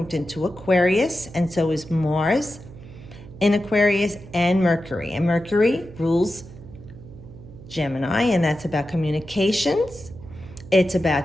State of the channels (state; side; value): noise; right; hum, 17 dB below the sound